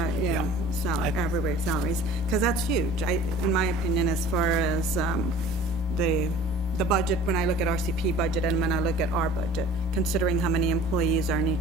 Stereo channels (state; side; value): noise; left; rumble, 20 dB below the sound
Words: wage salaries, because that's huge, in my opinion, as far as, the budget, when I look at RCP budget and when I look at our budget, considering how many employees are in